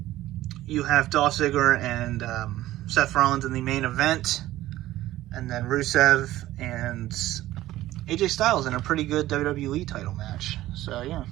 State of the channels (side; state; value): left; quieter; 15.2 dB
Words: You have Dolph Ziggler and Seth Rollins in the main event. And then Rusev and AJ Styles in a pretty good WWE title match. So, yeah.